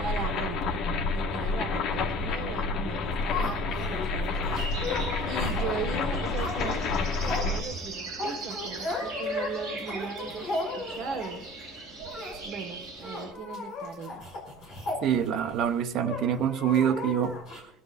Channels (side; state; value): both; normal; correlation 0.42